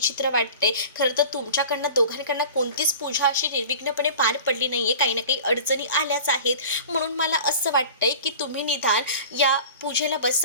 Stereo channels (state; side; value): inverted; both; correlation -0.40